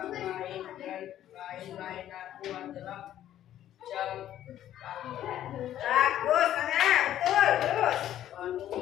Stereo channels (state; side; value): quieter; right; 11.9 dB